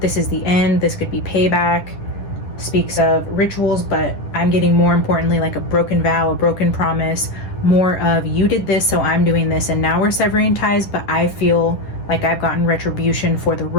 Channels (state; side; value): late; right; 10 ms